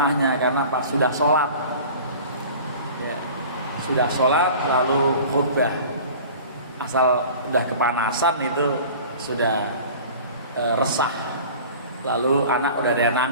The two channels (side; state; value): both; inverted; correlation -0.41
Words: karena pas sudah sholat, ya, sudah sholat lalu khutbah, asal udah kepanasan itu sudah resah, lalu anak udah ada yang